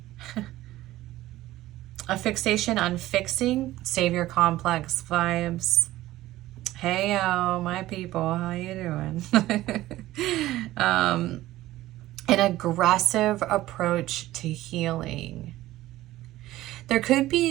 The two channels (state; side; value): quieter; left; 16.0 dB